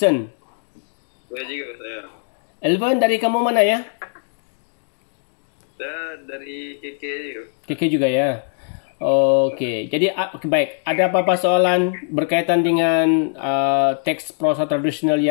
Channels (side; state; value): right; silent; digital silence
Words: Boleh juga saya. Elvin dari kamu mana ya? Saya dari KK juga. KK juga ya. Okey. Jadi baik. Ada apa-apa soalan berkaitan dengan teks prosa tradisional